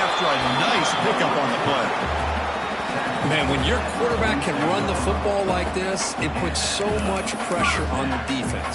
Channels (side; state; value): both; identical; correlation 1.00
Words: a nice pickup on the play. Man, when your quarterback can run the football like this, it puts so much pressure on the